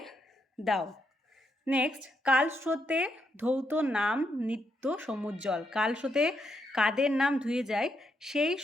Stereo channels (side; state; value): both; normal; correlation 0.79